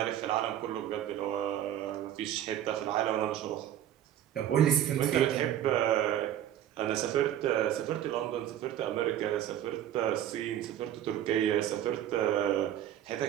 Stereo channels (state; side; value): quieter; left; 11.3 dB